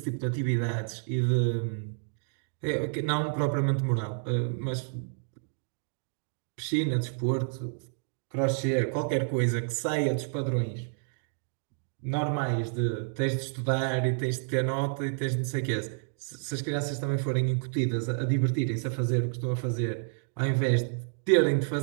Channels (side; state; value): left; silent; digital silence